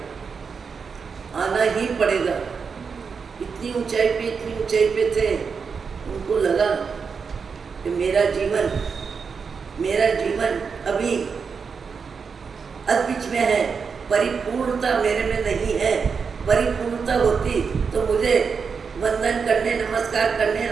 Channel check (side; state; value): left; quieter; 5.7 dB